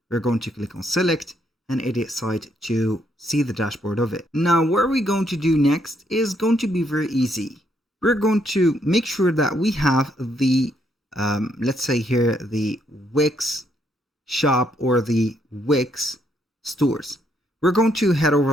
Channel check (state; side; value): normal; both; correlation 0.73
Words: We're going to click on select and edit site to see the dashboard of it. Now, what we're going to do next is going to be very easy. We're going to make sure that we have the, let's say here, the Wix shop or the Wix stores. We're going to head